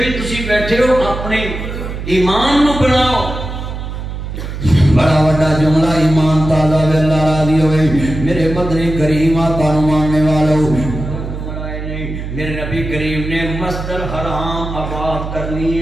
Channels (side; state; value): right; noise; hum, 7 dB below the sound